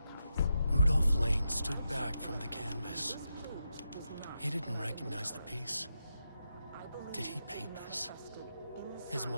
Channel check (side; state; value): both; inverted; correlation -0.86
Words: Rudolph Lane stood back from the canvas. He didn't recognize the piece. Did he paint this? His